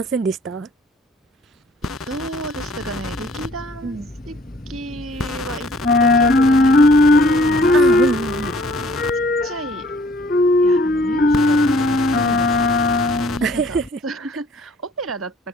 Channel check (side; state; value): both; normal; correlation 0.58